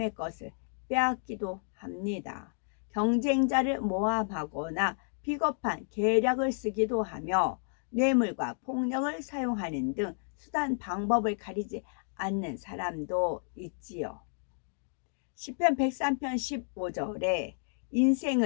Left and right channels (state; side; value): silent; right; digital silence